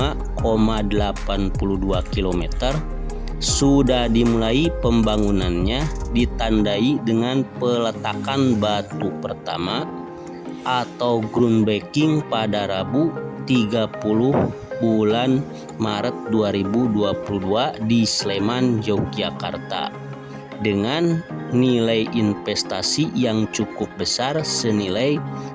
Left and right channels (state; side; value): identical; both; correlation 1.00